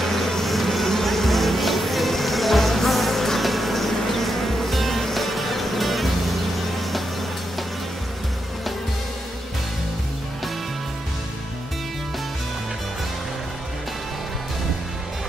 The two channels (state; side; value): normal; both; correlation 0.84